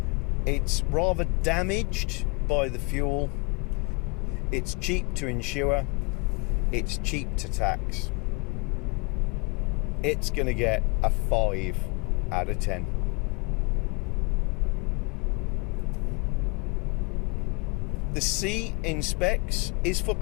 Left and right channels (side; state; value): right; quieter; 31.9 dB